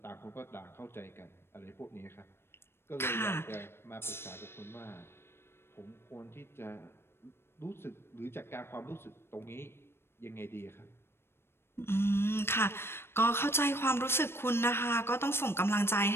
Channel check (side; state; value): right; late; 0.12 ms